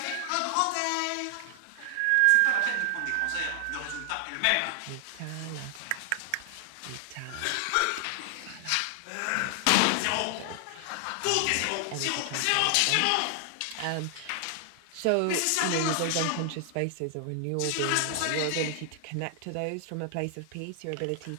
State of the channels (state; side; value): different; both; correlation 0.00